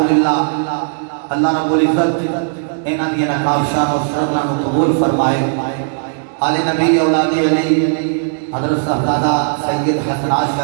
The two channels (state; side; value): silent; left; digital silence